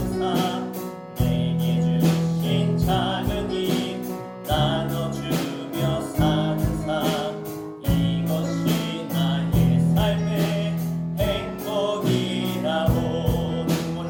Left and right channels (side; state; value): both; identical; correlation 1.00